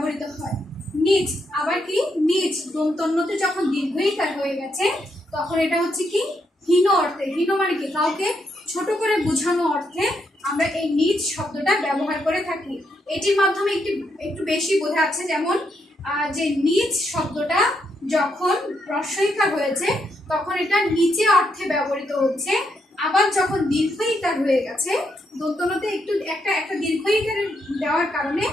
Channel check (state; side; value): normal; both; correlation 0.79